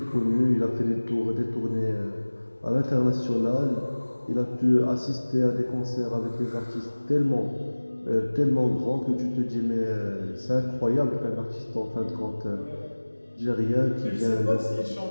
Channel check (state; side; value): inverted; both; correlation -1.00